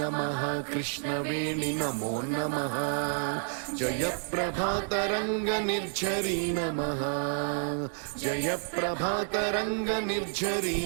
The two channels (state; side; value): silent; left; digital silence